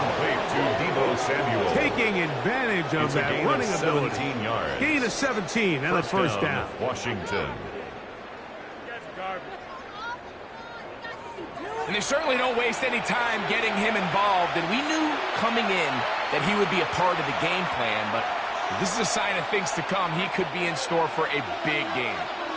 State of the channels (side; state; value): both; identical; correlation 1.00